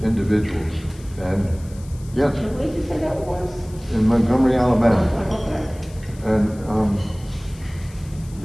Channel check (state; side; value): noise; left; hiss, 23 dB below the sound